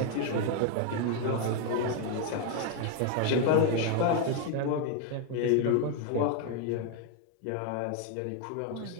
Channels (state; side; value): different; both; correlation 0.01